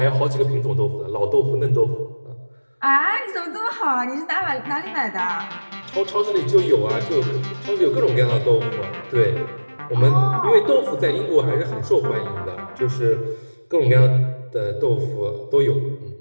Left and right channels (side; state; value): both; inverted; correlation -1.00